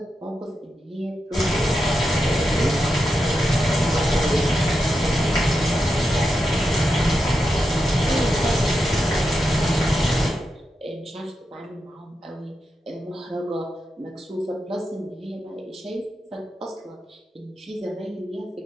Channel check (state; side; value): normal; both; correlation 0.87